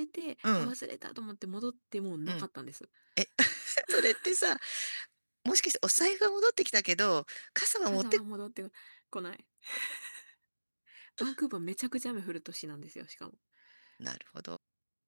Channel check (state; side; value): inverted; both; correlation -1.00